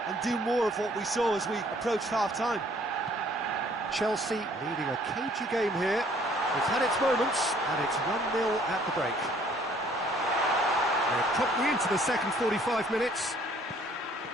and do more of what we saw as we approached half-time. Chelsea leading a cagey game here. It's had its moments, and it's 1-0 at the break. They're promptly into the second 45 minutes.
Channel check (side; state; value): both; normal; correlation 0.59